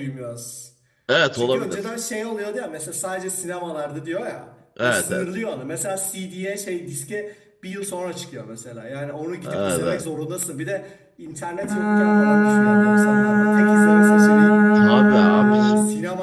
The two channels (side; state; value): both; identical; correlation 1.00